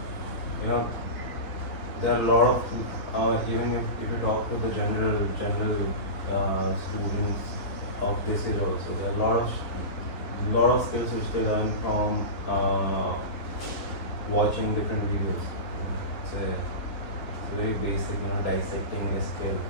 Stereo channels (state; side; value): late; right; 3.7 ms